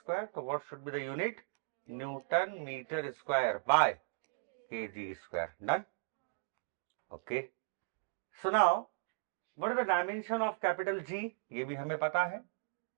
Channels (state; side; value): silent; left; digital silence